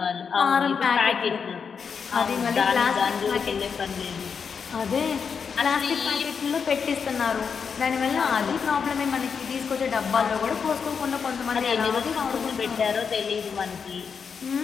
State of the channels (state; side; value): quieter; right; 6.2 dB